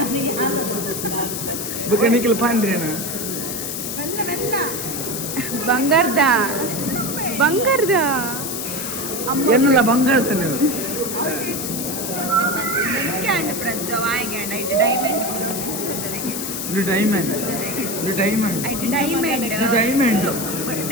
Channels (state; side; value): noise; left; hiss, 4 dB below the sound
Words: ಬಕನಿಕಲ್ ಪಾಂಡ್ರೇನಾ ಬಂಗಾರದ ಬಂಗಾರದ ಎನ್ನಲ್ಲ ಬಂಗಾರದ ನೀವು